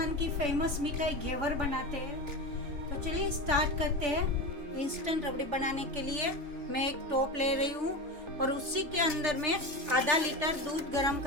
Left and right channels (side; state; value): left; late; 3.3 ms